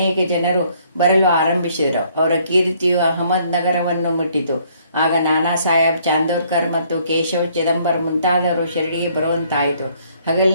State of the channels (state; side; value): inverted; both; correlation -0.64